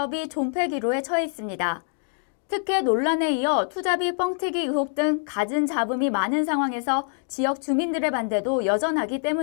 존폐 기로에 처해 있습니다. 특혜 논란에 이어 투자비 뻥튀기 의혹 등 갖은 잡음이 많은 상황에서 지역 주민들의 반대도 여전하기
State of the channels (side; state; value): right; silent; 62 dB below the other